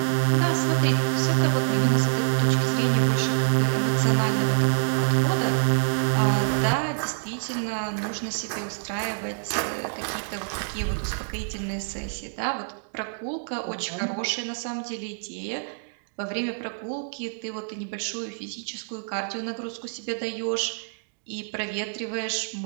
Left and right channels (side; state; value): left; silent; digital silence